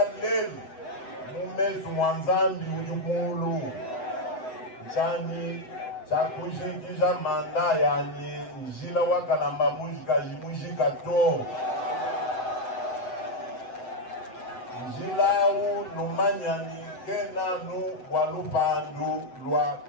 Lel, Mumezu Mwanzambi Ujumulu, Chani, Chakushikisha Manda yani, Njila Wakalamba Mujika Jimujika To. Njila u Numanyani, Kena nu Walupandu, Lwa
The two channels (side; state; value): right; late; 8.0 ms